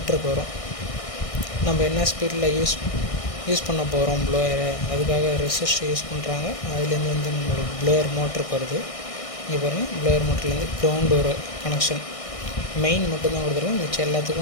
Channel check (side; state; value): right; late; 1.6 ms